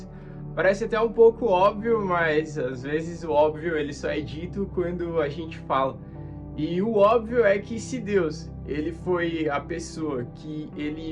Parece até um pouco óbvio, mas às vezes o óbvio ele só é dito quando a gente fala. E o óbvio é que se Deus, ele foi a pessoa que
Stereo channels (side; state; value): both; identical; correlation 1.00